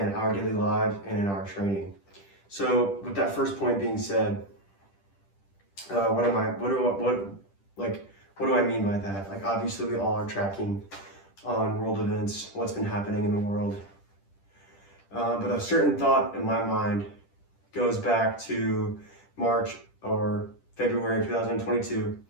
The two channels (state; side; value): late; right; 10 ms